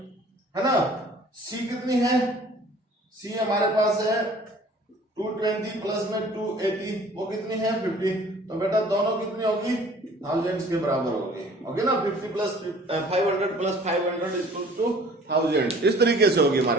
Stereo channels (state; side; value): normal; both; correlation 0.51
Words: है ना। C कितनी है, C हमारे पास है 220 प्लस में 280, वो कितनी है 50। तो बेटा दोनों कितनी होगी, थाउजेंड्स के बराबर होगी, ओके ना। 50 प्लस 500 प्लस 500 इक्वल टू 1000, इस तरीके से होगी